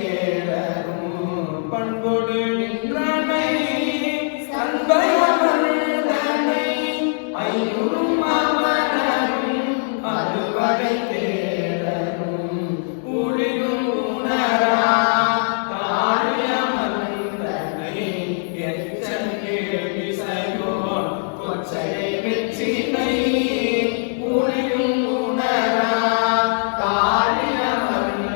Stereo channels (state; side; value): silent; right; digital silence